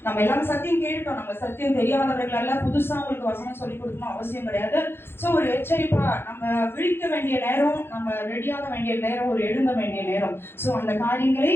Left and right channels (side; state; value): right; late; 0.11 ms